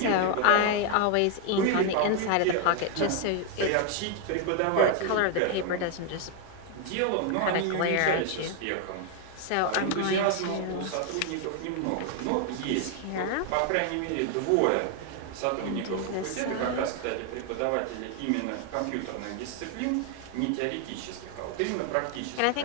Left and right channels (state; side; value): different; both; correlation 0.00